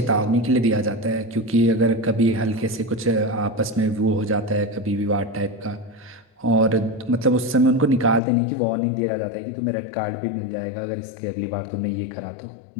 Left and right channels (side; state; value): right; drops out; at 8.2 s